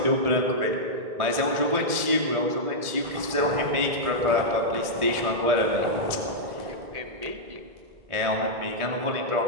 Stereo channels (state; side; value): late; left; 1.7 ms